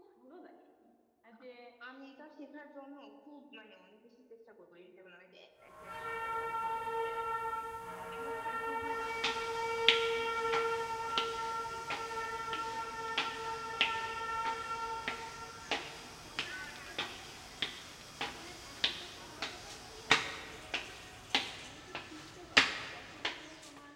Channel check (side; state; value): both; identical; correlation 1.00